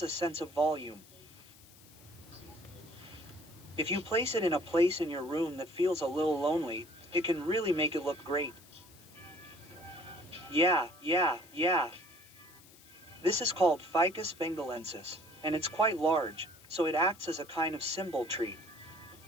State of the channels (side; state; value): left; noise; hiss, 23 dB below the sound